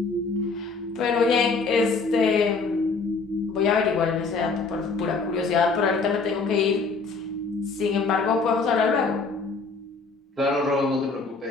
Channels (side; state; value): right; quieter; 4.2 dB